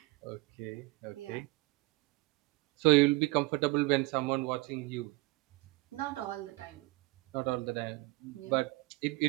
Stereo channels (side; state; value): left; quieter; 22.9 dB